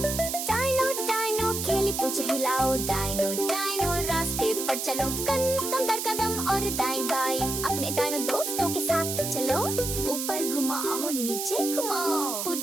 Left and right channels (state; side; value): noise; right; hiss, 3 dB below the sound